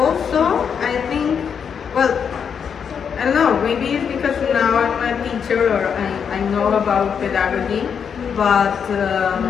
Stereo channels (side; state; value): right; quieter; 7.1 dB